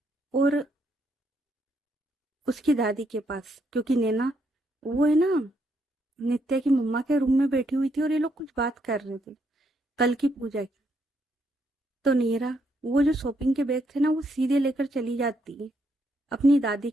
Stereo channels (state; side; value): normal; both; correlation 0.75